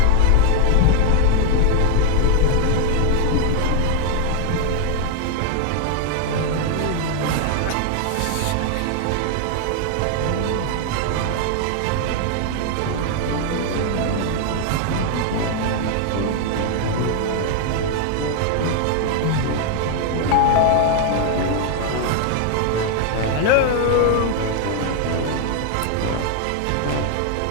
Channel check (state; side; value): different; both; correlation 0.00